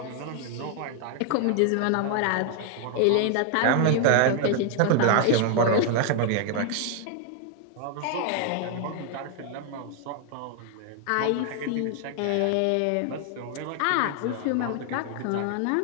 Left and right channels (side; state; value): both; different; correlation 0.00